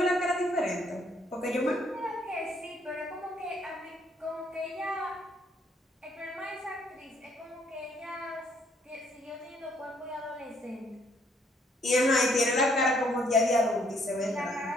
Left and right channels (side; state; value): both; normal; correlation 0.67